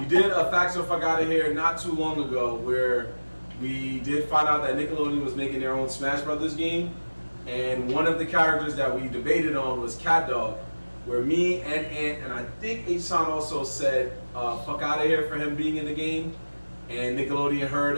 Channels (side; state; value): both; inverted; correlation -1.00